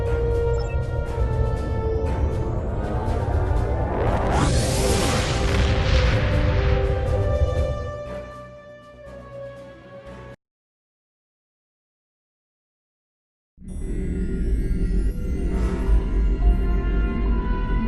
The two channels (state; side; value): identical; both; correlation 1.00